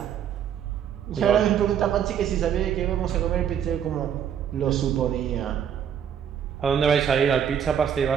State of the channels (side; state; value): left; quieter; 8.7 dB